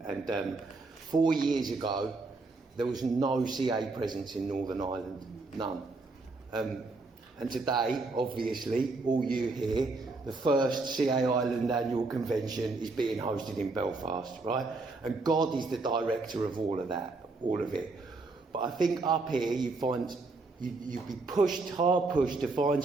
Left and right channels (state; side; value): quieter; left; 3.6 dB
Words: And 4 years ago, there was no CA presence in Northern Ireland, none. And today, obviously, all you here, the first CA Ireland annual convention is being hosted in Belfast, right? And God is the director of all of that, all of it. But I think up here you'd be hard pushed to find